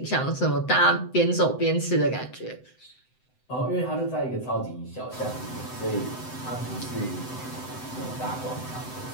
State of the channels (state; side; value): late; right; 7.9 ms